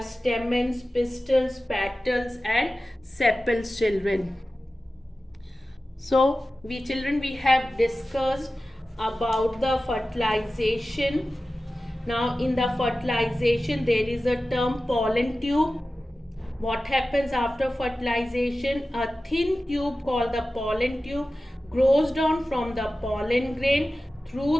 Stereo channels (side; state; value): both; normal; correlation 0.95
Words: stamens, pistils, petals and sepals, children. So we have discussed about the fertilization. Now in the fertilization there is a term pollen tube. What happens after fertilization? A thin tube called the pollen tube grows down from the pollen grain